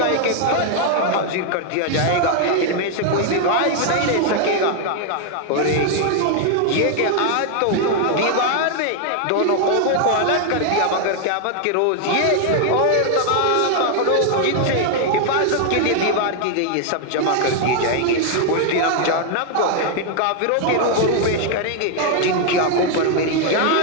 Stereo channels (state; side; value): different; both; correlation 0.00